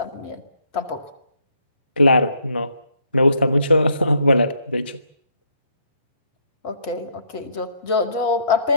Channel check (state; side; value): inverted; both; correlation -0.69